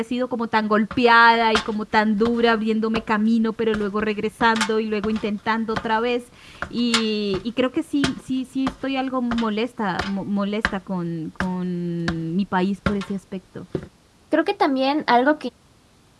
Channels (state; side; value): identical; both; correlation 1.00